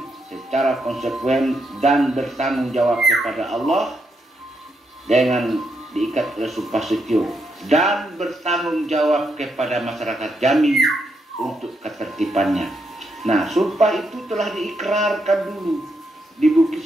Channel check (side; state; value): both; normal; correlation 0.80